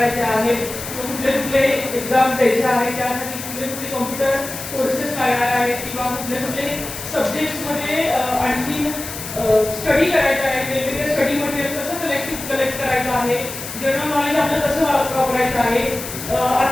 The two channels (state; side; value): noise; left; hiss, 9 dB below the sound